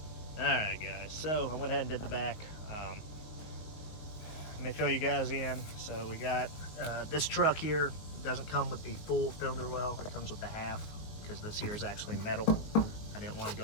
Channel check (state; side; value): late; right; 19 ms